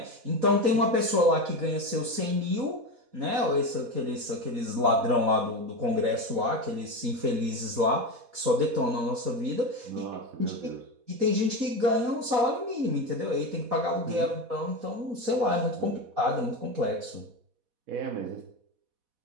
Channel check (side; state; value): left; late; 4.1 ms